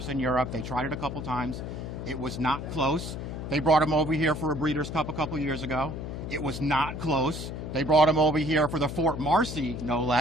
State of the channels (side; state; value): left; noise; hum, 7 dB below the sound